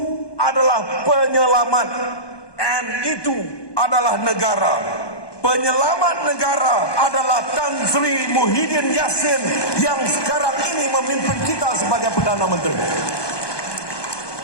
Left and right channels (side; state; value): right; late; 1.2 ms